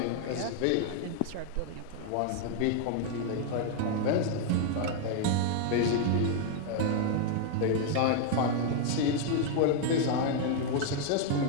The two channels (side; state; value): both; different; correlation 0.00